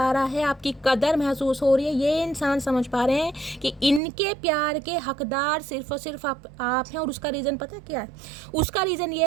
रहा है, आपकी कदर महसूस हो रही है। ये इंसान समझ पा रहे हैं कि इनके प्यार के हकदार सिर्फ और सिर्फ आप हैं। और उसका रीज़न पता क्या है? उसका रीज़न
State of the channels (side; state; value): left; drops out; at 4.0 s